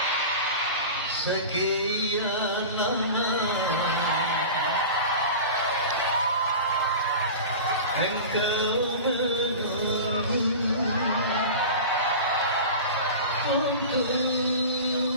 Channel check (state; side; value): inverted; both; correlation -0.32